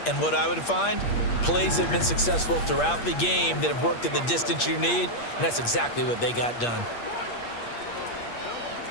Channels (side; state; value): right; late; 8.5 ms